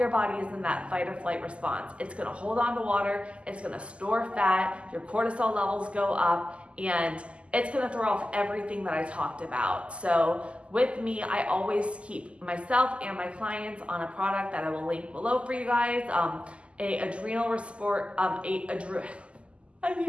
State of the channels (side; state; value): left; late; 0.056 ms